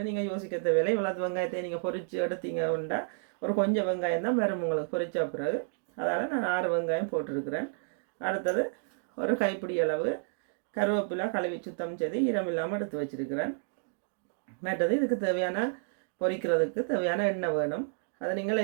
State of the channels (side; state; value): left; silent; digital silence